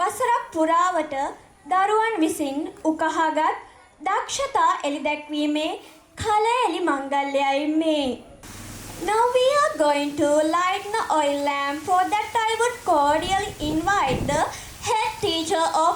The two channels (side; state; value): both; identical; correlation 1.00